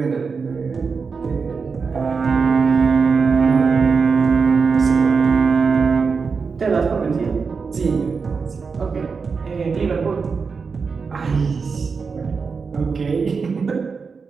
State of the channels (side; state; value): left; quieter; 5.2 dB